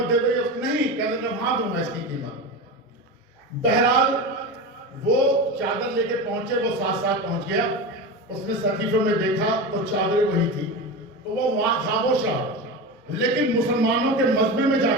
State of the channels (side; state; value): both; normal; correlation 0.24